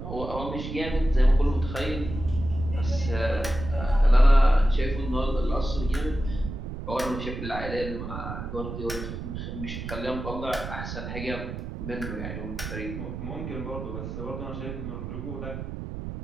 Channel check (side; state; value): right; noise; rumble, 7 dB below the sound